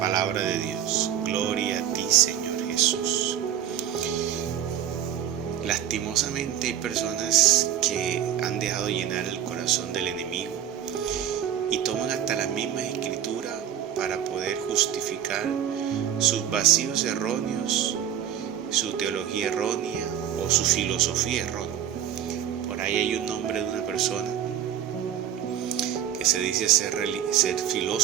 de Dios. Gloria a ti, Señor Jesús. Lastimosamente hay personas que han dejado llenar el corazón del enemigo y toman hasta las mismas escrituras para poder justificar sus vacíos erróneos, su teología errónea o su filosofía errónea. Por ahí hay un nombre de una persona que se dice ser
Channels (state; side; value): quieter; left; 10.0 dB